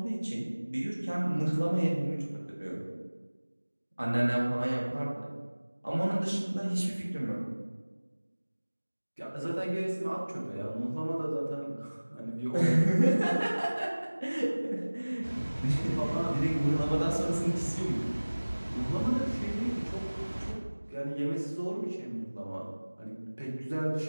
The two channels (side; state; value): both; inverted; correlation -1.00